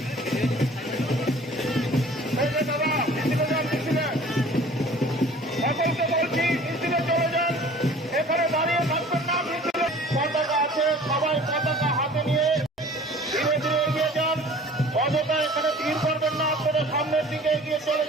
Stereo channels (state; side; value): normal; both; correlation 0.48